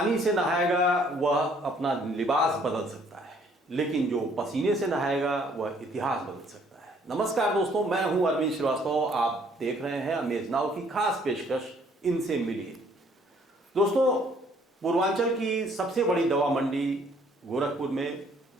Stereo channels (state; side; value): normal; both; correlation 0.62